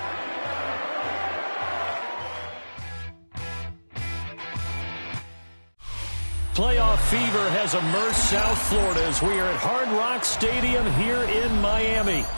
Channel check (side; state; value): both; inverted; correlation -1.00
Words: Playoff fever has immersed South Florida as we are at Hard Rock Stadium here in Miami.